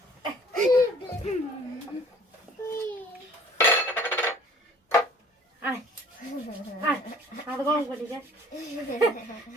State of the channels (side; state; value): both; normal; correlation 0.52